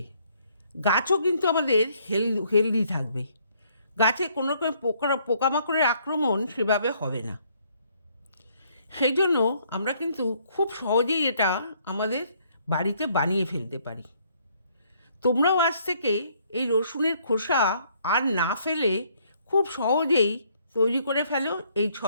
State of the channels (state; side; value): inverted; both; correlation -0.66